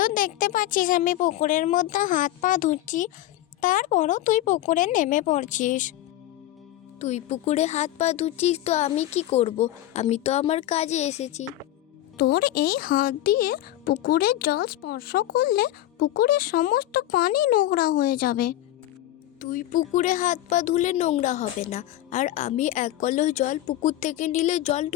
দেখতে পাচ্ছিস আমি পুকুরের মধ্যে হাত পা ধুচ্ছি, তারপরও তুই পুকুরে নেমে পড়ছিস। তুই পুকুরে হাত পা ধুচ্ছিস তো আমি কি করব? আমি তো আমার কাজে এসেছি। তোর এই হাত দিয়ে পুকুরের জল স্পর্শ করলে পুকুরের সমস্ত পানি নোংরা হয়ে যাবে। তুই পুকুরে হাত পা ধুলে নোংরা হবে না, আর আমি এক কলস জল পুকুর থেকে নিলে জল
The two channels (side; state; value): right; quieter; 14.2 dB